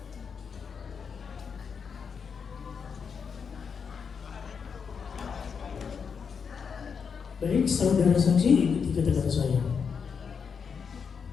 Baik, saudara saksi, ikuti kata-kata saya.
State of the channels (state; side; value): quieter; right; 6.2 dB